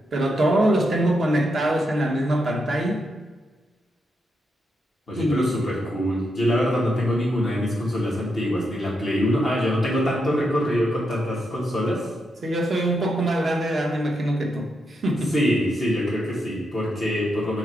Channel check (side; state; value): both; normal; correlation 0.83